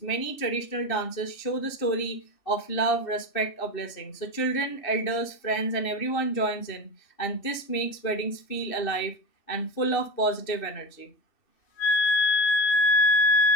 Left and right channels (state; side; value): late; right; 2.7 ms